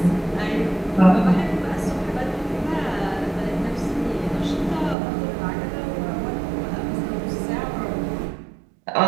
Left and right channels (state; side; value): drops out; left; at 5.0 s